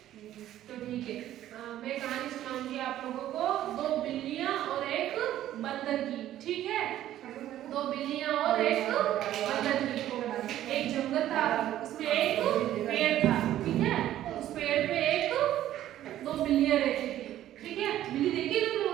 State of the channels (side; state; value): left; quieter; 12.8 dB